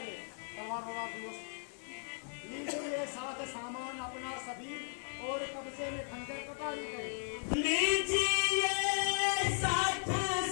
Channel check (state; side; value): silent; right; 54 dB below the other